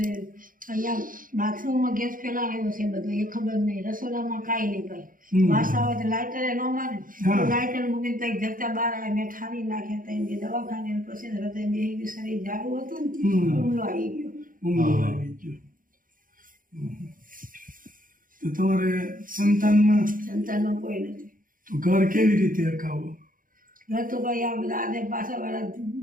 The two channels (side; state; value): left; late; 0.40 ms